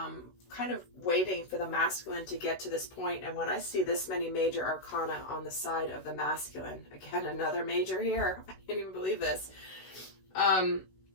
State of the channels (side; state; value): right; late; 16 ms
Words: kind of waiting for the masculine to get to this point. And when I see this many major arcana on the side of the masculine, again, another major here. I can't even believe this.